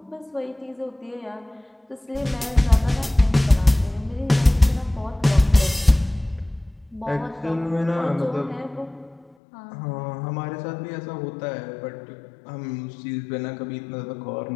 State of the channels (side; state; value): right; drops out; at 9.3 s